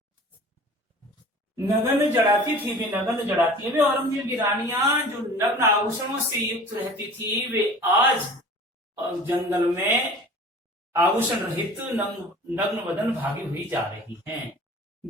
नगन जड़ाती थी, वे नगन जड़ाती है। वे औरंगजेब की रानियां जो नग्न आभूषणों से युक्त रहती थी, वे आज जंगल में आभूषण रहित नग्न बदन भागी हुई जा रही हैं।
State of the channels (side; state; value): both; normal; correlation 0.43